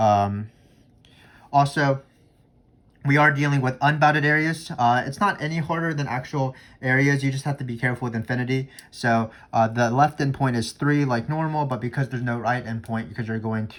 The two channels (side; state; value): both; identical; correlation 1.00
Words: Also, we are dealing with unbounded areas. It's not any harder than actual areas. You just have to be careful with infinity. So the left endpoint is 3 like normal, but because there's no right endpoint, because you're going